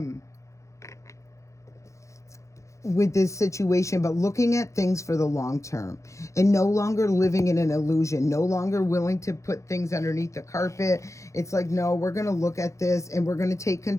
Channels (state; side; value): late; right; 0.15 ms